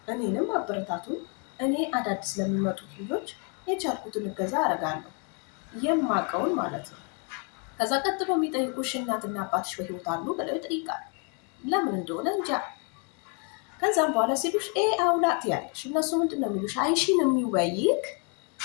እኔንም አበረታቱን። እኔ አዳዲስ ለሚመጡት ልጆች የቻልኩትን እገዛ አደርጋለሁ፣ የማውቀውን ማለት ነው። ከዛ ቀጥሎ የሚጠይቁሽ እናትና አባትሽ በህይወት አሉ ብለው ይጠይቃሉ። ለምን እንደሆነ እንጃ። ከዛም በኋላ ሲሉሽ ኤ አውላት ያለሽ እነሱ ምንድን ነው የሚሉሽ? አይሺን የሚወይክ፣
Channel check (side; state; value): right; quieter; 37.6 dB